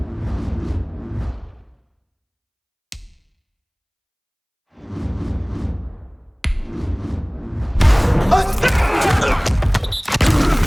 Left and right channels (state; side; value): identical; both; correlation 1.00